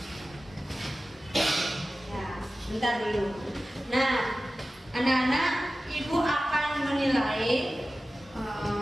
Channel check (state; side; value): normal; both; correlation 0.95